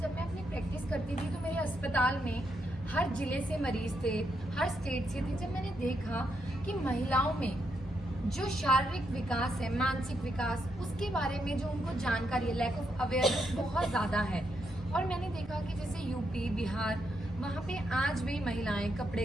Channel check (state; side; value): normal; both; correlation 0.80